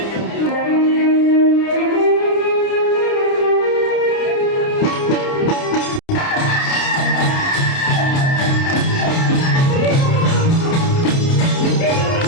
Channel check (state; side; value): late; right; 30 ms